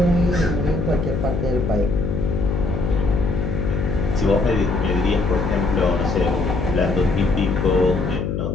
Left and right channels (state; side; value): noise; left; hum, 1 dB below the sound